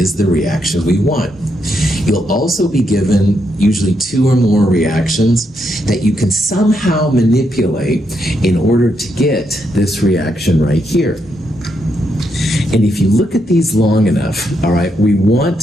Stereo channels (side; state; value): both; normal; correlation 0.80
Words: the reaction we want. You'll also be given usually two or more reactions that you can somehow manipulate in order to get this reaction right here. And if you look at these long enough, all right, we